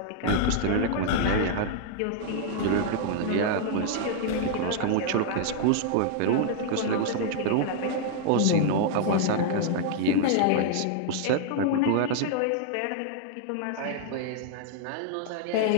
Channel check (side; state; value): both; different; correlation -0.01